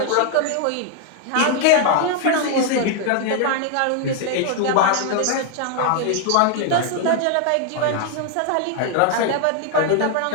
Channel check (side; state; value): both; different; correlation 0.00